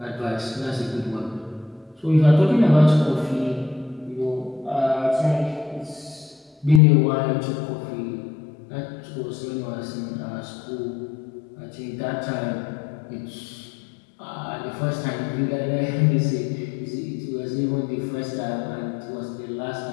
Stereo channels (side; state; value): right; drops out; at 6.8 s